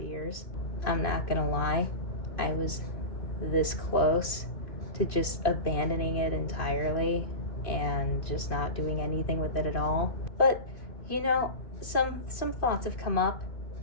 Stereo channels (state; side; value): late; right; 2.7 ms